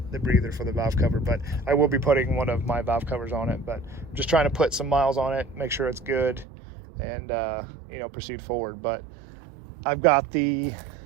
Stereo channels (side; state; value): left; drops out; at 6.5 s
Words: breather for the valve cover, but I will be putting one of my valve covers on it. But I'm just trying to put some miles on it, make sure it's good, and proceed forward. But I've got the